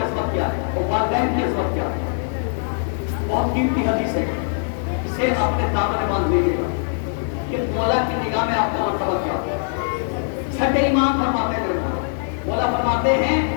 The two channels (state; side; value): silent; right; digital silence